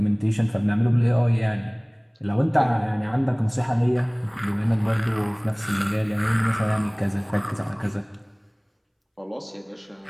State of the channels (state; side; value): identical; both; correlation 1.00